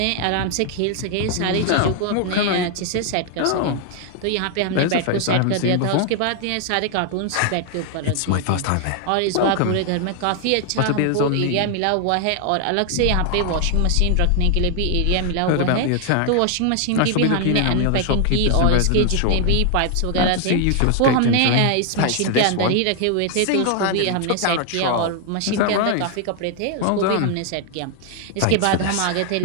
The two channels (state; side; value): different; both; correlation 0.00